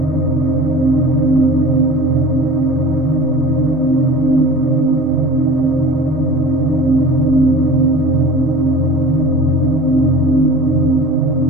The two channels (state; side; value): normal; both; correlation 0.39